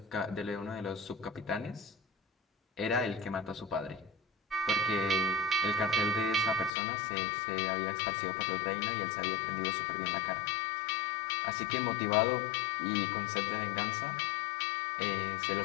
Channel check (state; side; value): drops out; right; at 6.7 s